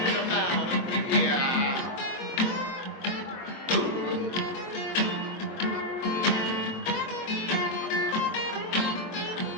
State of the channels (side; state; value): right; late; 23 ms